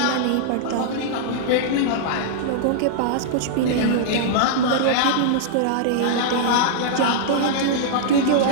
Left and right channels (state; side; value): different; both; correlation -0.02